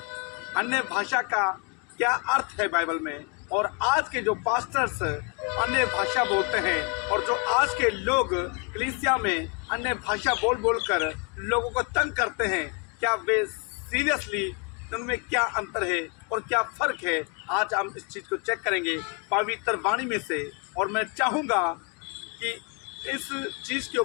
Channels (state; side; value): quieter; right; 35.3 dB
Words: अन्य भाषा का क्या अर्थ है बाइबल में, और आज के जो पास्टर्स अन्य भाषा बोलते हैं और जो आज के लोग कलीसिया में अन्य भाषा बोल बोल कर लोगों को तंग करते हैं, क्या वे सीरियसली उनमें क्या अंतर है और क्या फ़र्क है, आज हम इस चीज़ को चेक करेंगे पवित्र वाणी में से। और मैं चाहूँगा कि इस चीज़ के